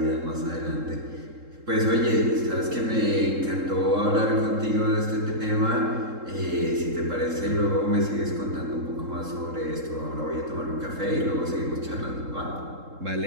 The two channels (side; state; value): left; late; 3.7 ms